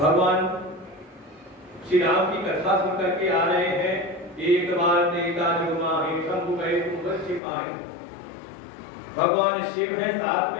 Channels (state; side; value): drops out; right; at 7.4 s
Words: श्री राम की कथा सुन करके आ रहे हैं। एक बार देखा जो माही शंभु गए छिपाए। भगवान शिव है साथ